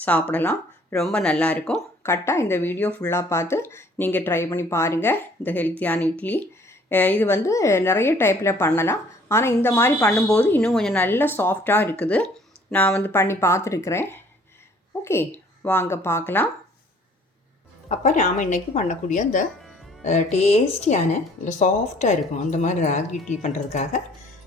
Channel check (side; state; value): both; normal; correlation 0.57